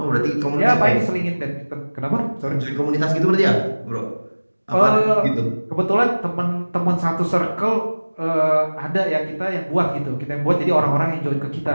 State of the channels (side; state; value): both; inverted; correlation -1.00